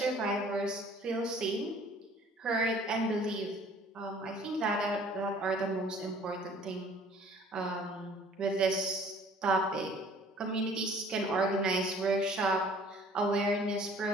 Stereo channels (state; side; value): normal; both; correlation 0.53